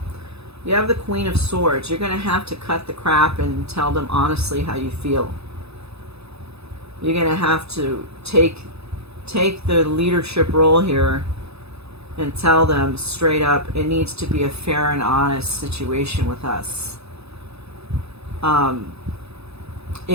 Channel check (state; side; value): late; left; 0.79 ms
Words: You have the Queen of Swords. You're going to have to cut the crap and tell them honestly how you feel. You're going to have to take the leadership role here and tell them straight up, it needs to be a fair and honest situation with us.